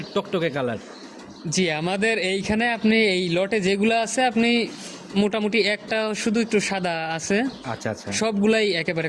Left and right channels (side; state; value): both; identical; correlation 1.00